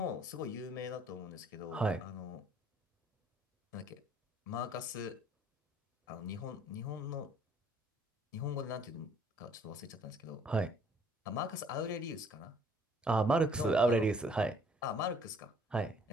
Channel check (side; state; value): both; normal; correlation 0.60